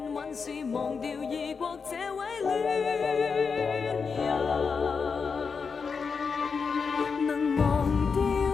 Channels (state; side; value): quieter; right; 5.4 dB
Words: 往事，忘掉異國這位戀人。能忘掉